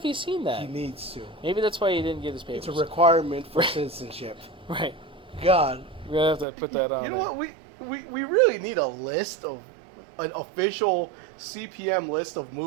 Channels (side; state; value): left; drops out; at 6.5 s